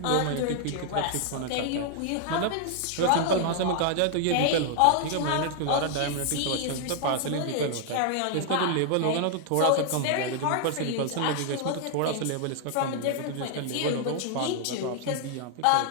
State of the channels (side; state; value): both; different; correlation 0.00